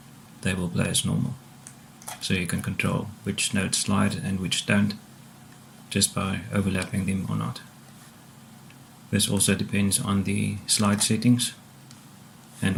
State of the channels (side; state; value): both; identical; correlation 1.00